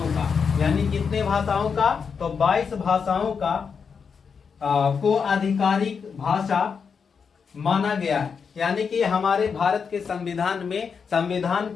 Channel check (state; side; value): quieter; right; 6.0 dB